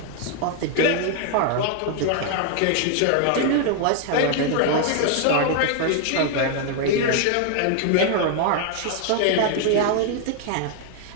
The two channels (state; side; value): different; both; correlation 0.00